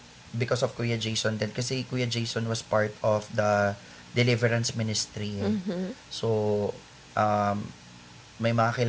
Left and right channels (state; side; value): identical; both; correlation 1.00